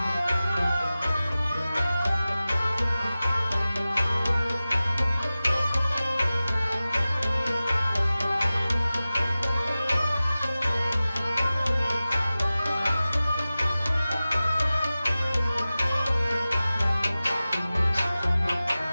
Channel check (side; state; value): both; inverted; correlation -0.96